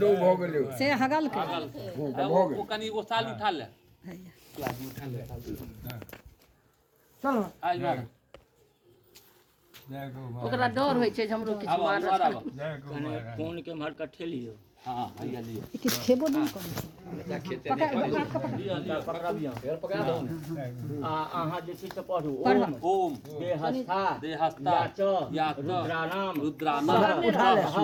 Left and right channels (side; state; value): both; identical; correlation 1.00